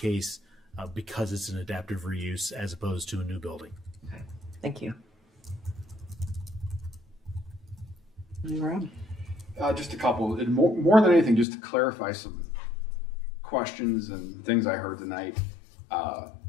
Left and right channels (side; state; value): right; drops out; at 11.5 s